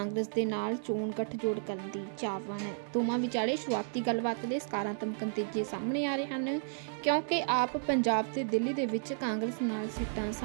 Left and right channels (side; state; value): left; silent; digital silence